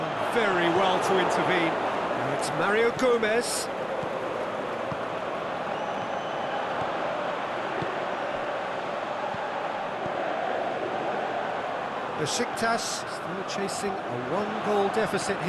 very well to intervene. Now it's Mario Gomez. Besiktas still chasing a one-goal deficit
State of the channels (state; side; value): identical; both; correlation 1.00